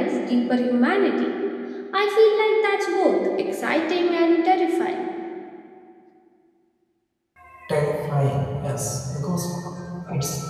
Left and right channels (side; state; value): both; identical; correlation 1.00